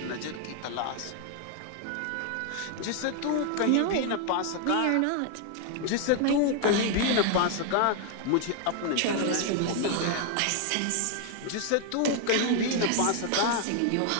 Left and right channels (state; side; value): different; both; correlation 0.00